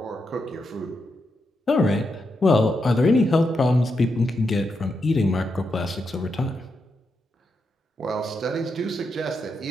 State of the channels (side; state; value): both; normal; correlation 0.84